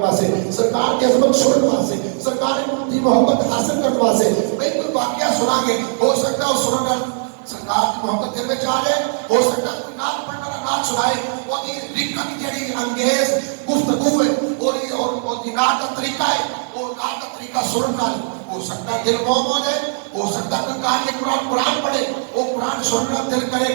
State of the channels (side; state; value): left; silent; 62 dB below the other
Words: سرکار کی عظمت سننے واسطے سرکار دی محبت حاصل کرنے واسطے بھئی کوئی واقعہ سنا گے ہو سکتا ہے سنن نال سرکار کی محبت دل میں آ جائے ہو سکتا ہے کوئی نعت پڑھنے والا نعت سنائے وہ دی رکت جڑی انگیز گفتگو ہے اور دی نعت کا طریقہ ہے وہ نعت کا طریقہ سنن نال ہو سکتا ہے دل موم ہو جائے ہو سکتا ہے کوئی قاری قرآن پڑھے وہ قرآن سننا دل کرے